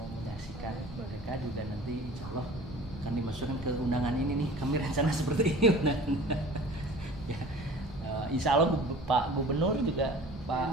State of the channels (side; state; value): right; noise; rumble, 15 dB below the sound